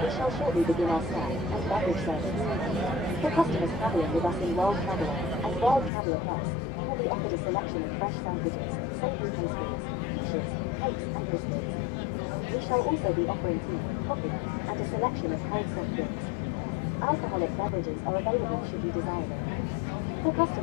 shall shortly begin our snack and beverage service. For customers travelling with us in World Traveller and World Traveller Plus, you will be offered a selection of fresh sandwiches, savoury pastries, quiches, cakes and biscuits. We shall also be offering tea, coffee, and a selection of cold soft drinks. Alcoholic beverages are available should you desire them. For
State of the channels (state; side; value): drops out; right; at 5.9 s